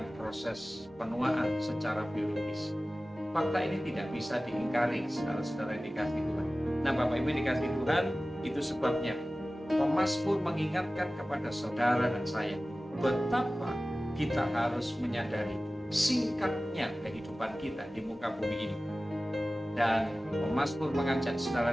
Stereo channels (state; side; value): normal; both; correlation 0.97